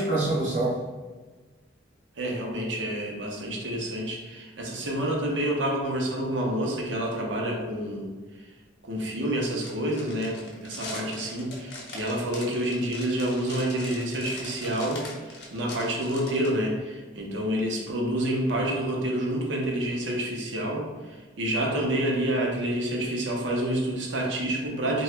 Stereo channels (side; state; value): both; normal; correlation 0.37